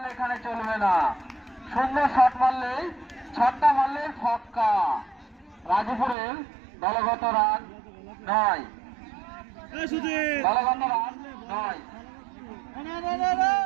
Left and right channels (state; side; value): drops out; left; at 6.2 s